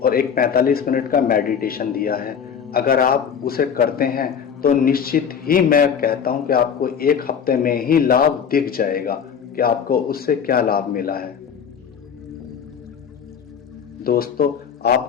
और एक 45 मिनट का मेडिटेशन दिया है। अगर आप उसे करते हैं तो निश्चित ही मैं कहता हूं कि आपको 1 हफ्ते में ही लाभ दिख जाएगा कि आपको उससे क्या लाभ मिला है। दोस्तों,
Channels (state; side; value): quieter; right; 7.4 dB